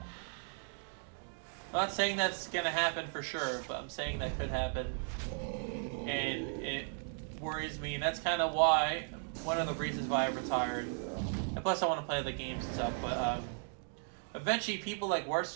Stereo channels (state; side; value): silent; left; 54 dB below the other